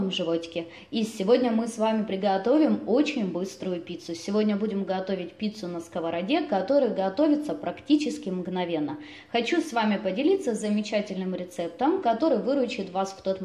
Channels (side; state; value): both; identical; correlation 1.00